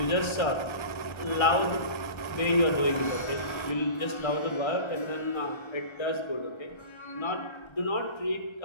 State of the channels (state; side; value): late; right; 1.3 ms